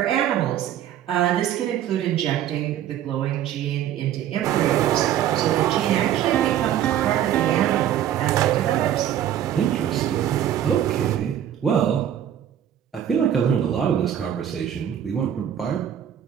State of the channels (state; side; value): quieter; left; 10.6 dB